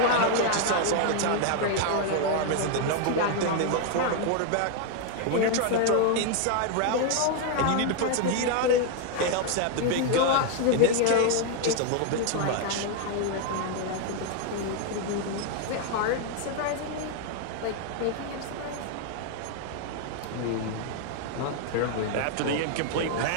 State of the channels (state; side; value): different; both; correlation 0.00